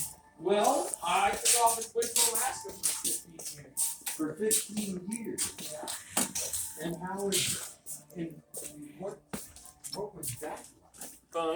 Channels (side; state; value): both; identical; correlation 1.00